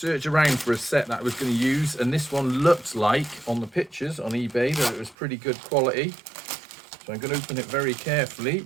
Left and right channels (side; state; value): left; drops out; at 5.2 s